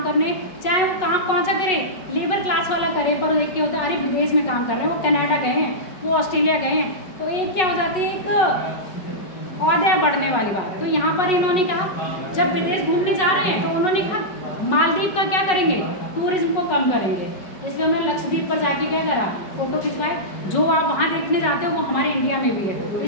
करने, चाहे वो काम कौन सा करे, लेबर क्लास वाला करे, पर एक क्या होता है, अरे विदेश में काम कर रहे हैं, वो कनाडा गए हैं, वो ऑस्ट्रेलिया गए हैं, तो एक क्या हो जाती है, एक ऑर्डर बढ़ने वाली बात। तो यहाँ पर इन्होंने कहा जब विदेश घूमने जा रहे हैं तो उन्होंने कहा मालदीव का क्या करेंगे, टूरिज्म को कम करेंगे। इसलिए उन्होंने लक्षद्वीप पर जाके क्या करा, फोटो खिंचवाए। जो आप वहाँ देखने जाते हो वो हमारे इंडिया में भी है।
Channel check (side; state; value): right; late; 5.4 ms